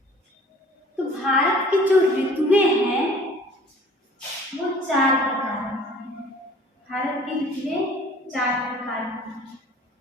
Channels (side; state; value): both; normal; correlation 0.49